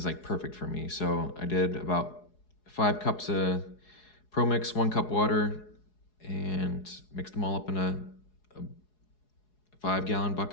like perfect for me. So I did about 5 cups of Pro Mix, 1 cup water, and mixed them all up in a 5-gallon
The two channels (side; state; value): right; late; 4.8 ms